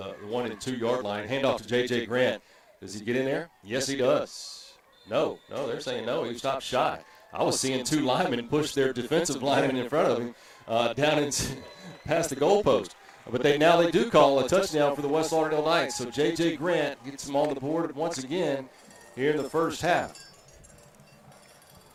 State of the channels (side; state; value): both; identical; correlation 1.00